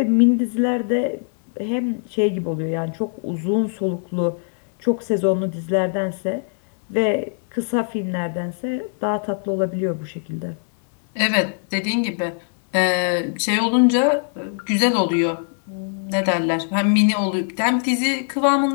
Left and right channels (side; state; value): right; silent; 60 dB below the other